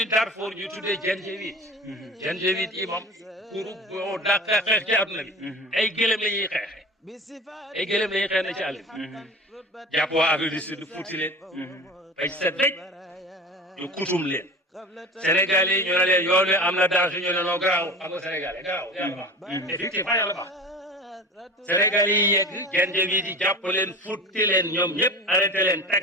Darfour ñu tuddee Janjaweed. Janjaweed imam pour boo dàq xeex ci àdduna bi. ay gëlëm la ñuy xeexee. ay gëlëm la ñuy xeex na ci àll bi. jàpp waa Afrique du Sud fuuti leen. bay set rek ñu kutum leen. Sénégal yi ñu ne leen yoon wi am na danger ñu ne noo garaaw xam nga Sénégal yi garaaw yàlla baax. effectivement yàlla baax. Sénégal yi yegg Janjaweed yi jàpp leen futti leen ñoom ñëpp arrêté leen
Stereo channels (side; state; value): both; normal; correlation 0.35